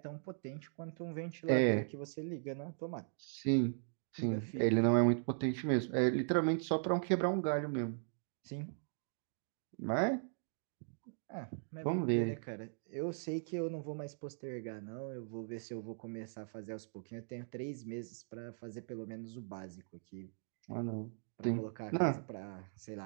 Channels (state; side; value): silent; left; digital silence